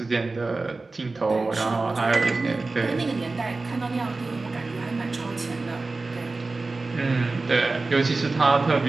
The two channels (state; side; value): quieter; left; 3.5 dB